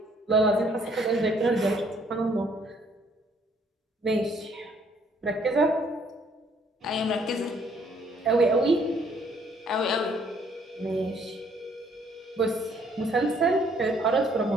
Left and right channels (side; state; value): both; normal; correlation 0.64